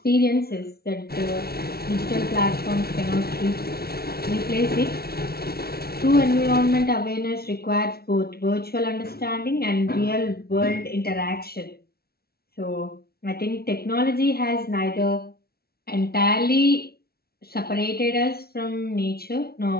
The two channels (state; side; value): late; right; 0.45 ms